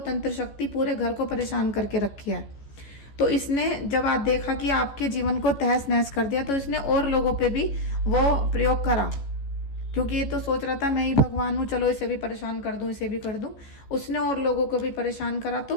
शक्ति पूरे घर को परेशान करके रखी है। तो इसने जब आप देखा कि आपके जीवन को तहस नहस कर दिया, तो इसने और लोगों पे भी वो प्रयोग करा, क्योंकि ये तो सोच रहा था मैं ही भगवान हूँ, चलो इसे भी परेशान कर दूं, इसे भी कर दूं। उसने और लोगों को भी परेशान करा।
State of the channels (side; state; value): right; late; 14 ms